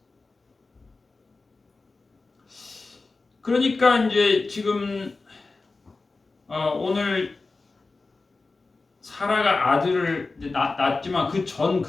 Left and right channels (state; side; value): quieter; right; 3.7 dB